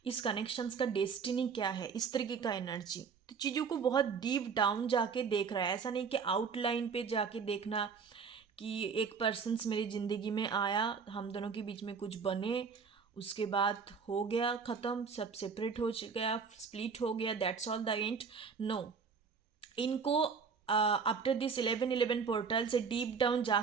इस कनेक्शंस का डेस्टिनी क्या है, इस तरीके का एनर्जी। तो चीज़ों को बहुत डीप डाउन जाके देख रहा है, ऐसा नहीं कि आउटलाइन पे जाके देखना कि एक पर्सन्स मेरी ज़िंदगी में आया, हम दोनों के बीच में कुछ बने उसके बाद हो गया ख़त्म, सब सेपरेट हो गया, स्प्लिट हो गया, that's all the end. No, इनको आफ्टर दिस 11 पोर्टल से डीप डाउन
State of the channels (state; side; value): quieter; left; 5.8 dB